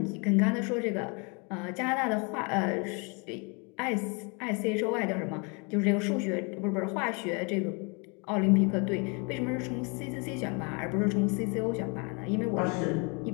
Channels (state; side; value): quieter; right; 32.6 dB